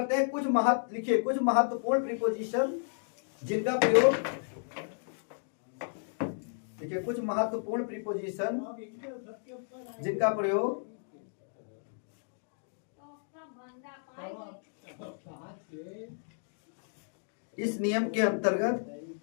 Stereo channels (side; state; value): right; silent; digital silence